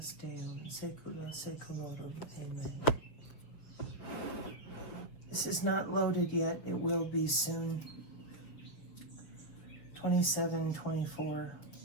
Deo in saecula saeculorum. Amen. This is not loaded yet. It will be soon. 27:24.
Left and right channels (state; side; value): late; right; 6.5 ms